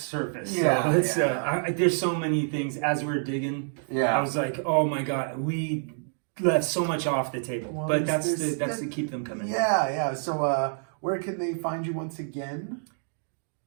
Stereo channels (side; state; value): left; silent; digital silence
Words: Yeah, So there's so many things as we're digging. Yeah. I was like, oh my God, we left so much off the table. Well, but that's there's- to keep them coming. Yeah. So, where can they find you once again?